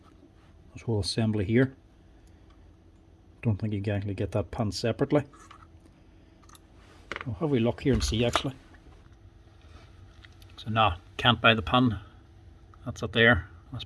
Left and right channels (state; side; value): identical; both; correlation 1.00